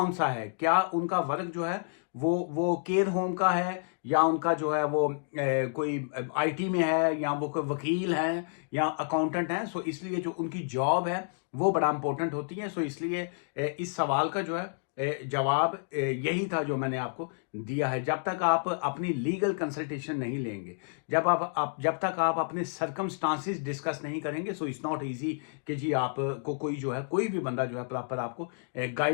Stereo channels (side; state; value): right; silent; digital silence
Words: सा है। क्या उनका वर्क जो है वो केयर होम का है, या उनका जो है वो कोई आईटी में है, या वो कोई वकील है या अकाउंटेंट है। सो इसलिए जो उनकी जॉब है वो बड़ा इंपॉर्टेंट होती है। सो इसलिए इस सवाल का जो है जवाब यही था जो मैंने आपको दिया है। जब तक आप अपनी लीगल कंसल्टेशन नहीं लेंगे, जब तक आप अपने सरकमस्टांसिस डिस्कस नहीं करेंगे, सो इट्स नॉट इजी कि जी आपको कोई जो है कोई भी बंदा जो है प्रॉपर आपको